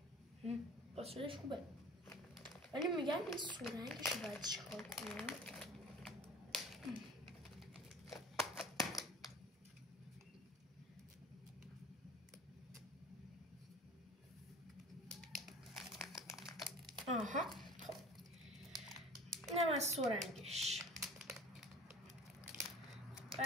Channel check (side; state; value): both; normal; correlation 0.43